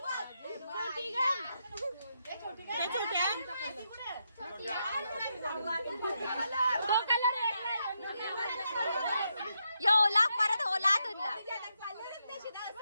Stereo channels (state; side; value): inverted; both; correlation -0.82